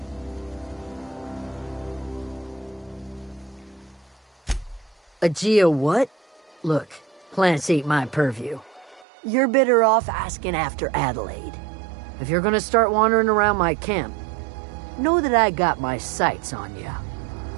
A geo what? Look, plants ain't my purview. You're better off asking after Adelaide. If you're gonna start wandering around my camp, know that I got my sights on you.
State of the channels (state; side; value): drops out; left; at 9.1 s